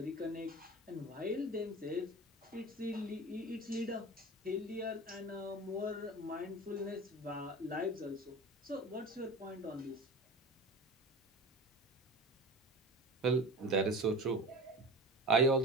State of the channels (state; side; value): normal; both; correlation 0.33